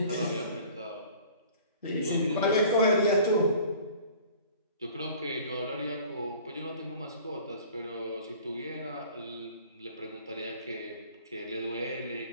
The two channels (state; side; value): inverted; both; correlation -0.47